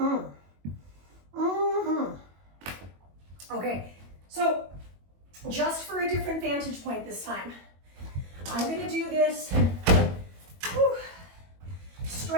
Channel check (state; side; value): late; left; 21 ms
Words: Okay, so just for a different vantage point this time, I'm gonna do this